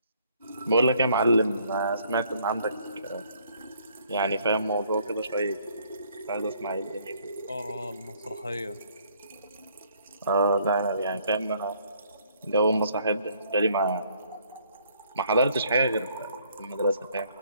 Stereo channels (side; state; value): both; inverted; correlation -0.64